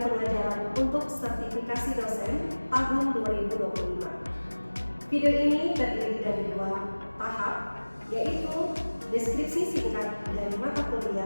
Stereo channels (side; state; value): both; inverted; correlation -1.00